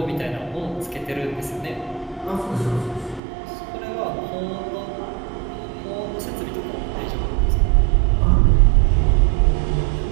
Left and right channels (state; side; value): drops out; left; at 3.2 s